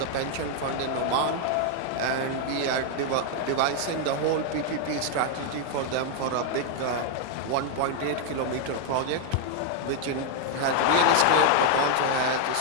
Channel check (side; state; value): both; different; correlation 0.00